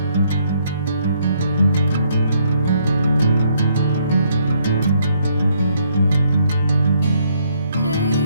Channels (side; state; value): both; inverted; correlation -0.70